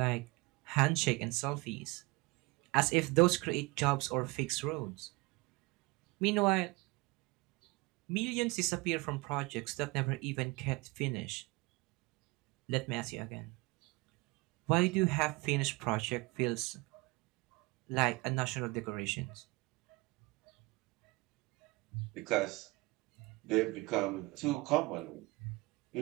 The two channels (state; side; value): quieter; left; 24.6 dB